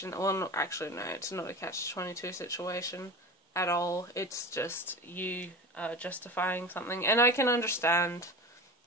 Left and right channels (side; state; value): both; normal; correlation 0.31